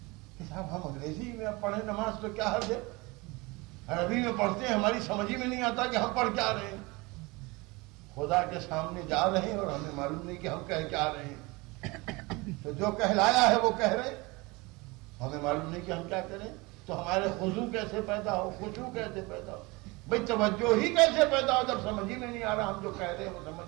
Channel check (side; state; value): left; quieter; 24.5 dB